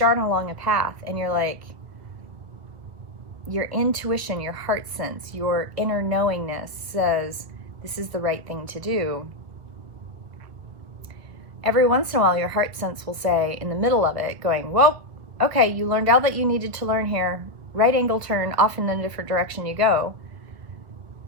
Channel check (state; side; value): late; left; 1.5 ms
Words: along a path and you're like, your intuition, your heart sense, your inner knowingness says this is the right thing to do. Every once in a while, your heart sense will say in the middle of it, going, whoa, okay, you learned all that you needed to learn here. Right angle turn, off in a different direction you go.